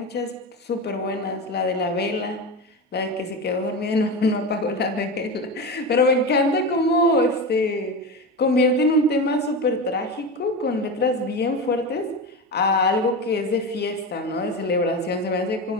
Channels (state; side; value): normal; both; correlation 0.22